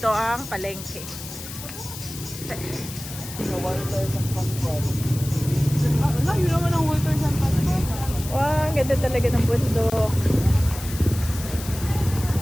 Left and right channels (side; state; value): left; noise; hiss, 12 dB below the sound